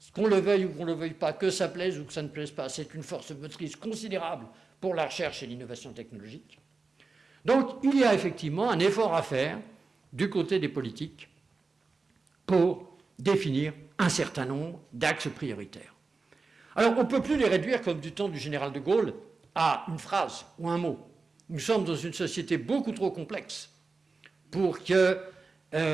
qu'on le veuille ou qu'on ne le veuille pas, que ça plaise ou que ça ne plaise pas, c'est une force motrice considérable pour la recherche et l'innovation technologique. Donc, il y a effectivement un effort à faire du côté des politiques pour définir un certain nombre d'axes prioritaires. Alors, on ne peut plus les réduire, comme du temps du général de Gaulle, à une phrase ou un mot. Nous sommes dans une société beaucoup trop complexe pour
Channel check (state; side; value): quieter; left; 4.1 dB